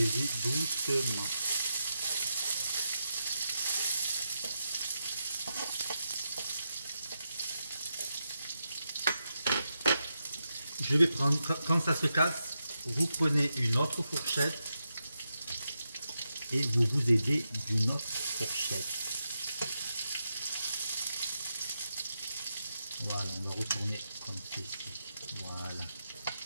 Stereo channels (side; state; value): both; inverted; correlation -0.86